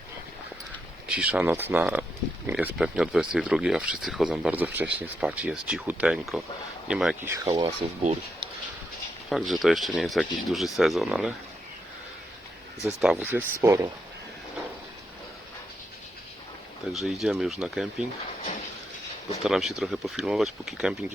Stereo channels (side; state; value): both; normal; correlation 0.82